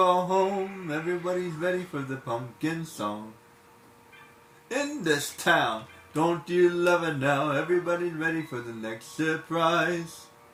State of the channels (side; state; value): both; identical; correlation 1.00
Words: home, everybody's ready for the pumpkin song. In this town, don't you love it now? Everybody's ready for the next surprise.